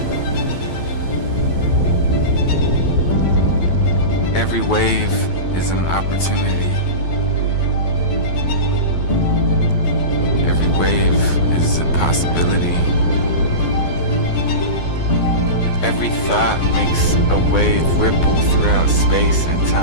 Every wave is an opportunity. Every wave is a possibility. Every thought makes a wave ripple throughout space and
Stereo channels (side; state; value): right; late; 12 ms